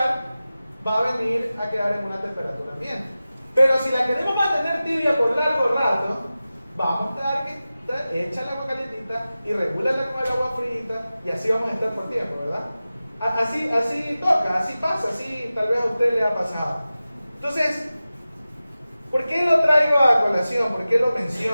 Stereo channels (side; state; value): both; inverted; correlation -0.95